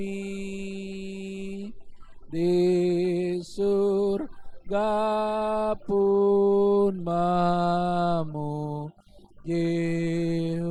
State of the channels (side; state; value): both; identical; correlation 1.00